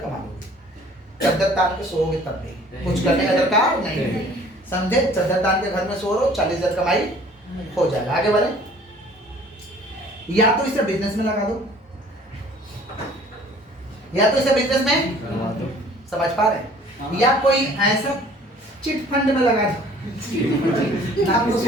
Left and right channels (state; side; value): normal; both; correlation 0.52